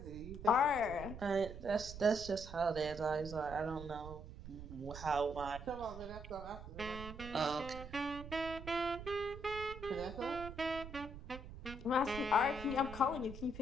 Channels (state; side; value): noise; right; rumble, 11 dB below the sound